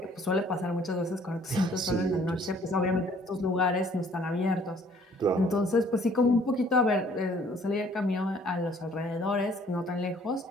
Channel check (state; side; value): normal; both; correlation 0.58